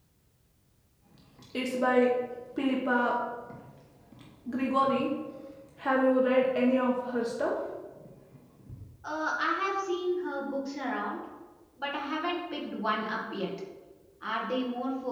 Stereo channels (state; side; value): identical; both; correlation 1.00